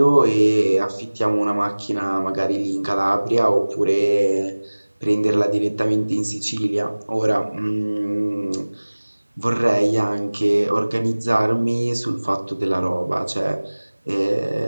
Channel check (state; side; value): inverted; both; correlation -1.00